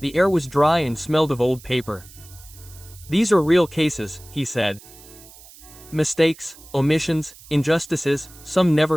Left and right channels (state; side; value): noise; right; hiss, 21 dB below the sound